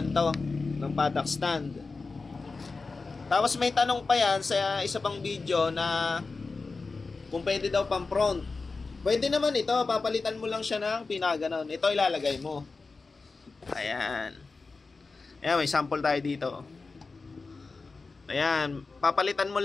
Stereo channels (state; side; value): quieter; right; 4.1 dB